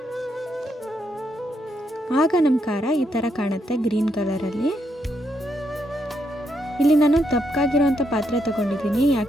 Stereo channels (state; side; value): normal; both; correlation 0.78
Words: ಆಗ ನಮ್ಮ ಖಾರ ಈ ಥರ ಕಾಣುತ್ತೆ, ಗ್ರೀನ್ ಕಲರಲ್ಲಿ. ಇಲ್ಲಿ ನಾನು ದಪ್ಪಗಾಗಿರೋವಂಥ ಪಾತ್ರೆ ತೊಗೊಂಡಿದ್ದೀನಿ,